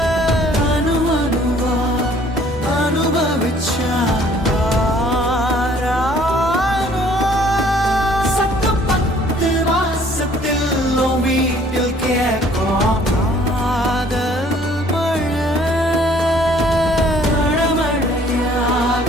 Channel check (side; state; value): both; normal; correlation 0.57